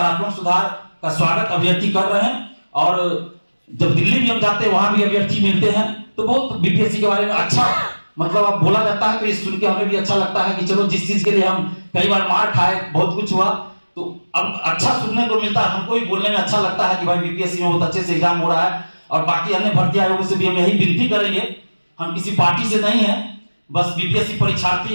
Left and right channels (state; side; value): inverted; both; correlation -1.00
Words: सुधार का स्वागत अभ्यर्थी कर रहे हैं, और जब दिल्ली भी हम जाते हैं वहां भी अभ्यर्थी मिलते हैं, तो बहुत बीपीएससी के बारे में अच्छा मतलब अब बोला जाता है, तो ये सुन के हमें भी अच्छा लगता है कि चलो जिस चीज के लिए हम कई बार मार खाए, बहुत कुछ हुआ, तो अब अच्छा सुनने को मिलता है। हमको भी बोलने में अच्छा लगता है कि भाई बीपीएससी में बहुत अच्छे से एग्जाम हो रहा है। और बाकी अन्य भर्ती आयोगों से भी हम यही विनती करेंगे, हम किसी पार्टी से नहीं है, बस बीपीएससी परीक्षार्थी